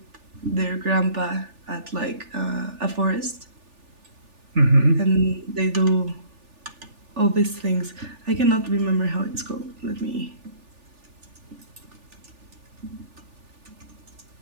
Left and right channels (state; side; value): late; left; 3.4 ms